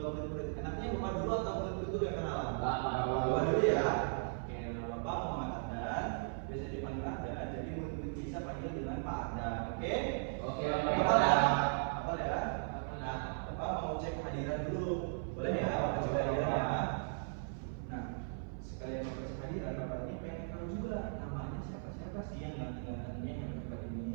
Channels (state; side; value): silent; left; 53 dB below the other